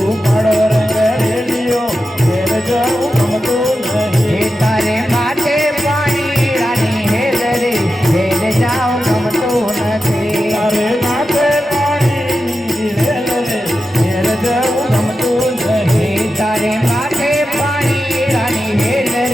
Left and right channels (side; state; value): both; normal; correlation 0.91